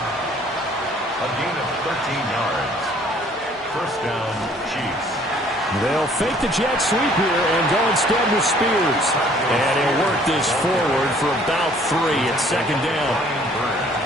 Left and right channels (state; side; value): normal; both; correlation 0.58